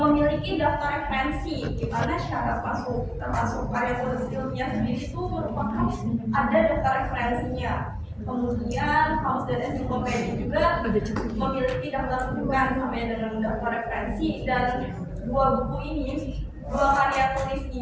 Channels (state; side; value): identical; both; correlation 1.00